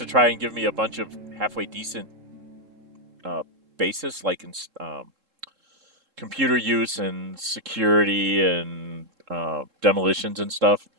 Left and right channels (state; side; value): late; left; 3.7 ms